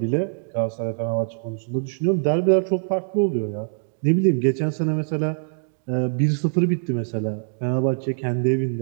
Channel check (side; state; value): left; silent; digital silence